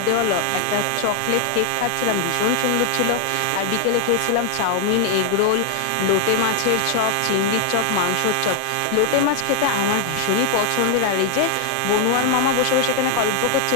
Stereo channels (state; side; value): different; both; correlation -0.01